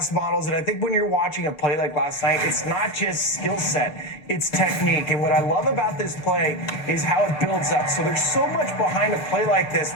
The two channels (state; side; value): late; right; 6.7 ms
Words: models. And I think when you're watching a play like last night, it's not just skill set, it's technique. And what I love about this play is how it builds up. So there's so much behind a play like this.